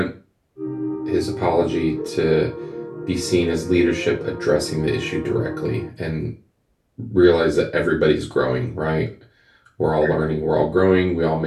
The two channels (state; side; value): identical; both; correlation 1.00